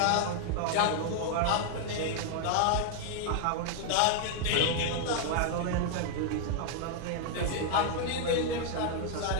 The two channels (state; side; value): different; both; correlation 0.00